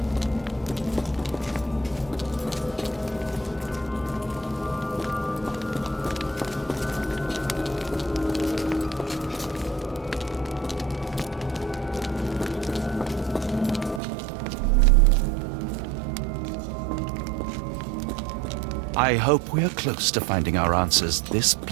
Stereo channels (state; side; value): drops out; left; at 14.0 s